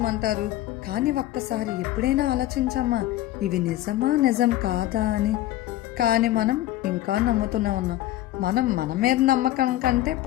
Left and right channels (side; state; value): right; quieter; 14.8 dB